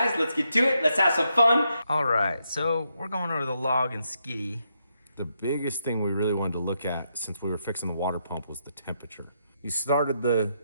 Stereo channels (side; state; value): both; inverted; correlation -0.80